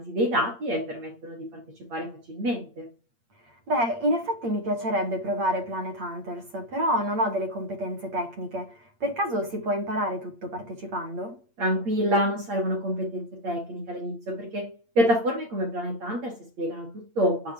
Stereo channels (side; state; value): left; late; 8.6 ms